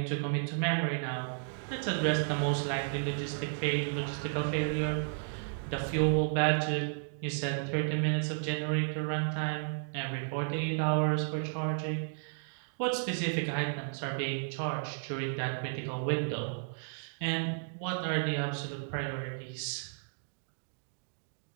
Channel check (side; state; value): left; silent; digital silence